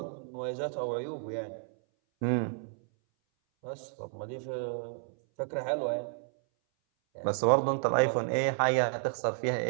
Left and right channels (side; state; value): left; silent; 57 dB below the other